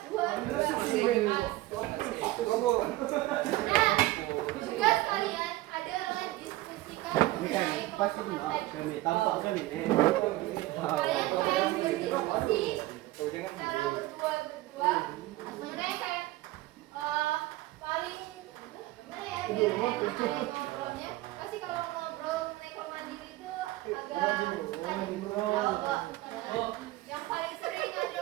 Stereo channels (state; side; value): quieter; left; 17.7 dB